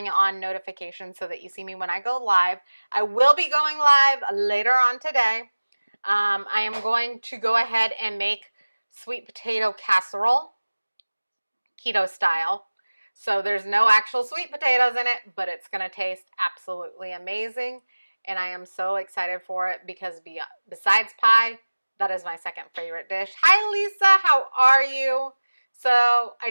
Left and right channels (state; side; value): inverted; both; correlation -1.00